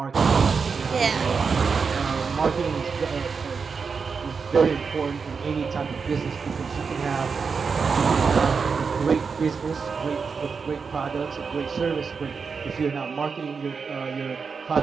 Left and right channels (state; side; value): quieter; left; 5.4 dB